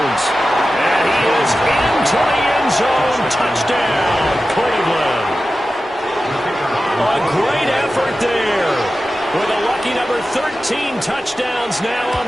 And he is into the end zone. Touchdown, Cleveland. A great effort there. With a lucky number 13 touchdowns now on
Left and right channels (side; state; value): both; normal; correlation 0.94